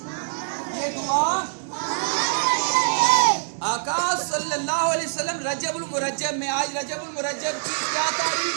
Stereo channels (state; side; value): silent; left; digital silence